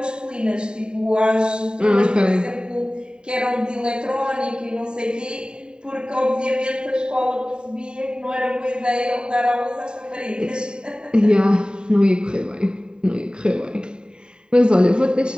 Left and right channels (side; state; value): left; late; 0.048 ms